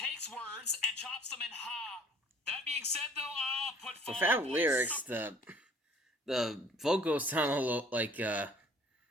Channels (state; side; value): normal; both; correlation 0.54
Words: words and chops them in ha. That being said, though, I'll put without lyrics, the vocals sound a little like I